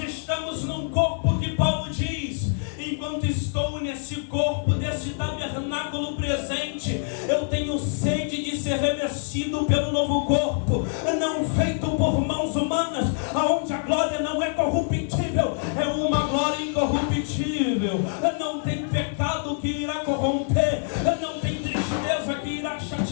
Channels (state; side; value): silent; right; 55 dB below the other